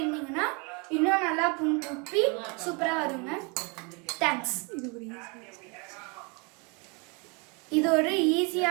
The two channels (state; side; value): quieter; left; 31.7 dB